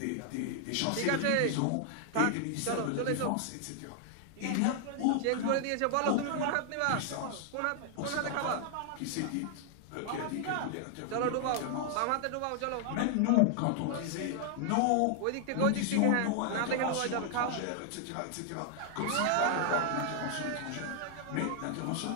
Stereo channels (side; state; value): both; different; correlation 0.00